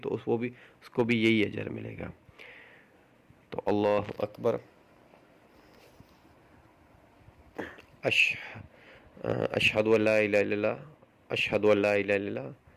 اس کو بھی یہی اجر ملے گا. تو اللہ اکبر، اشہد ان لا الہ الا اللہ، اشہد ان لا الہ الا اللہ،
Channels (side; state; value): both; identical; correlation 1.00